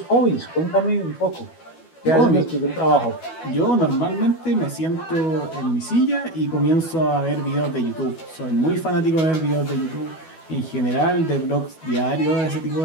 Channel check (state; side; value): late; right; 12 ms